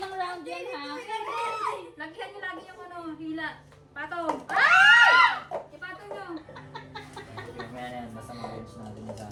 round yan ha. Lagyan nyo lagi yung ano, hila. Patong. Ipatong nyo. Mamaya na yan, basta ma-bench natin yung sa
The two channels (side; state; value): both; identical; correlation 1.00